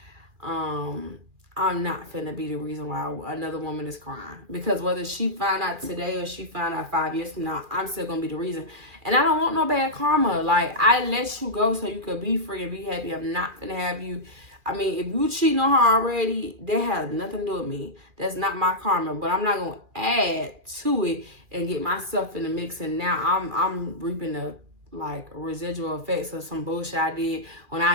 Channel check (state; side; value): late; left; 2.4 ms